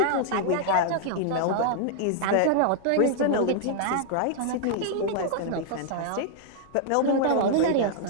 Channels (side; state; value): both; different; correlation -0.01